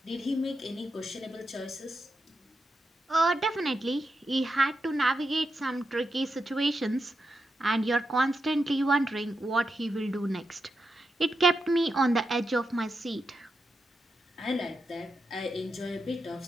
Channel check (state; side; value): normal; both; correlation 0.87